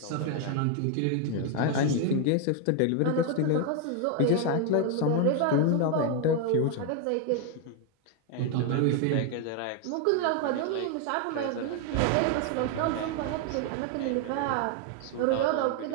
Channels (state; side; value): different; both; correlation 0.01